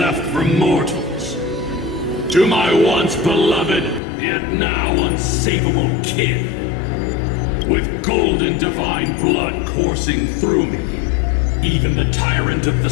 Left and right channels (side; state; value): right; drops out; at 4.0 s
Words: for mortals. To my once beloved, yet now unsavable kin. With golden divine blood coursing through me, even the tyrant of the